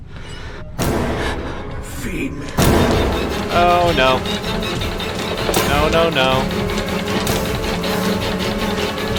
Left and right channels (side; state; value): both; identical; correlation 1.00